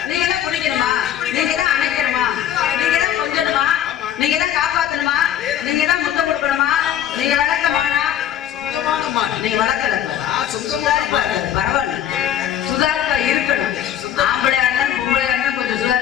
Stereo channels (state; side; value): quieter; right; 10.6 dB